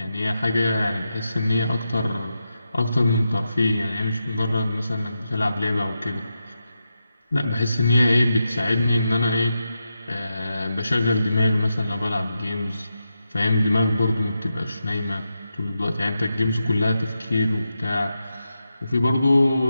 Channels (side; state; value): both; inverted; correlation -0.88